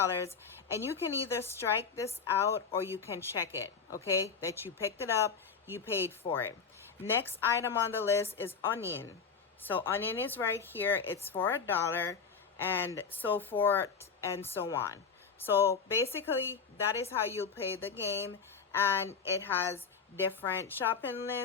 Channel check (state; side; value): quieter; right; 5.8 dB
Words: and you can either strike this out or you can check it, okay? That you picked it up, you paid for it. Next item on the list is onion. So onion is right here. It's for $1 and so forth and so on. So basically that is how you'll play the game, and it has different shopping